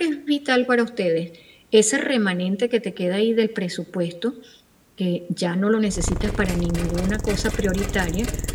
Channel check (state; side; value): identical; both; correlation 1.00